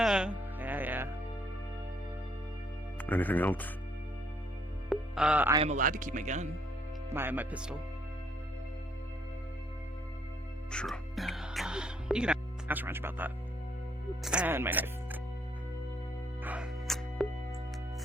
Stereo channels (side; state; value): both; normal; correlation 0.68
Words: Yeah. Anything else? I am allowed to keep my gun. My pistol. Sure. You can ask Ranch about that. And my knife.